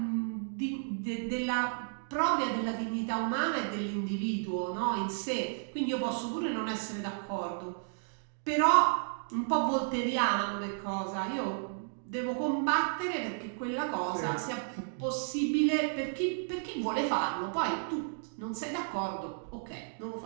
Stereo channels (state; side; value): silent; left; digital silence